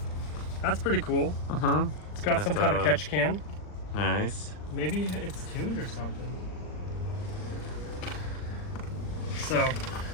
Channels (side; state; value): right; late; 39 ms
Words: That's pretty cool. It's got some kind of catch can. Nice. Maybe it's tuned or something. So,